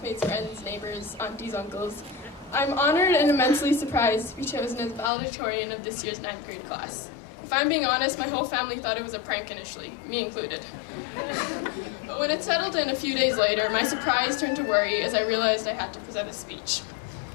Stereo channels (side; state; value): right; drops out; at 5.1 s